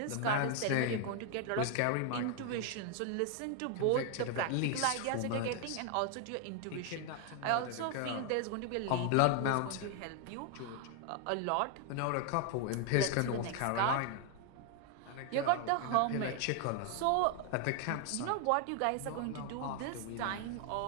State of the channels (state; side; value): different; both; correlation 0.00